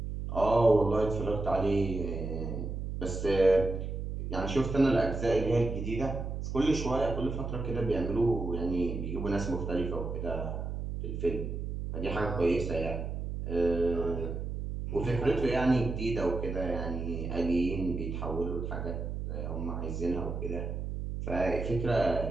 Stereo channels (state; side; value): noise; right; hum, 4 dB below the sound